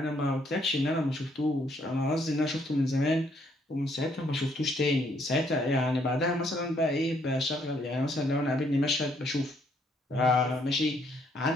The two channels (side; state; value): both; normal; correlation 0.69